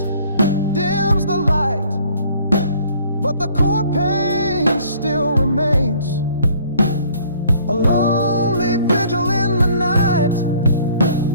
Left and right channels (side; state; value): both; inverted; correlation -0.57